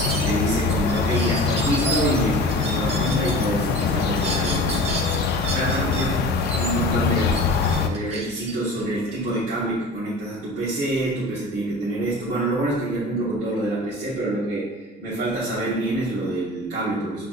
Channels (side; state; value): both; normal; correlation 0.38